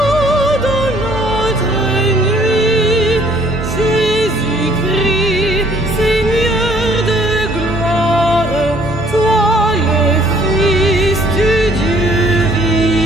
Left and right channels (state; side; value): normal; both; correlation 0.60